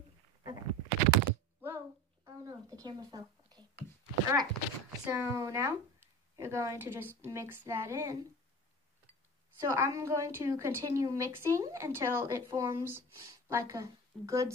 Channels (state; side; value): normal; both; correlation 0.35